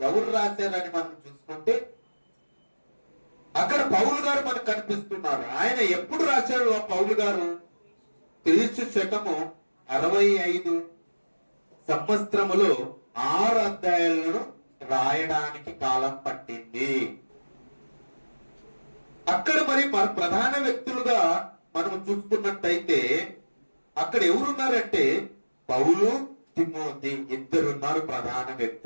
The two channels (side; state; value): both; inverted; correlation -1.00